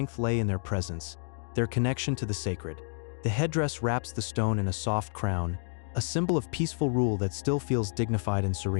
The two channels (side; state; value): right; silent; digital silence